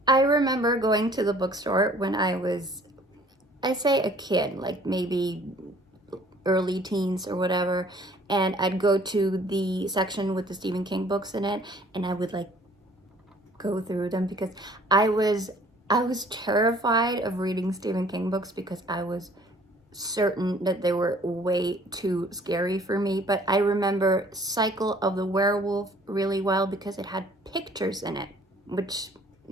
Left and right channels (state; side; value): normal; both; correlation 0.55